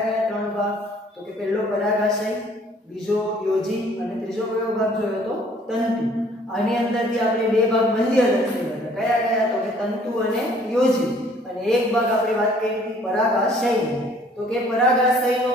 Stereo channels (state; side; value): normal; both; correlation 0.58